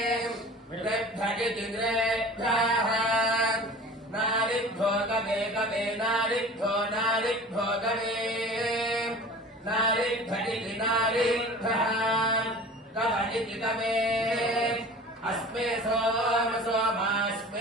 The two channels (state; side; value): normal; both; correlation 0.41